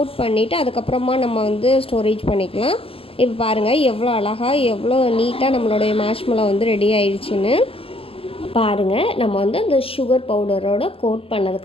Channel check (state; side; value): late; right; 0.27 ms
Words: பண்ணிவிட்டு அதுக்கப்புறமா நம்ம வந்து ஸ்டோரேஜ் பண்ணிக்கலாம். இப்போ பாருங்கள் எவ்வளோ அழகாக எவ்வளோ நீட்டாக நம்மளுடைய மார்ஷ்மெலோ வந்து ரெடி ஆயிடுச்சுன்னு. பாருங்கள் நம்ம வந்து அந்த சுகர் பவுடரோட கோட்